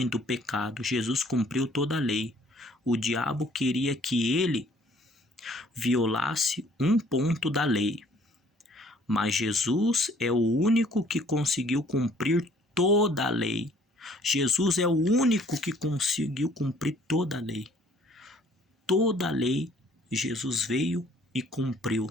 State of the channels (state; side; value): normal; both; correlation 0.59